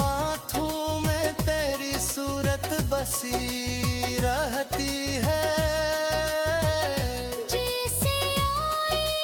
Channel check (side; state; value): both; identical; correlation 1.00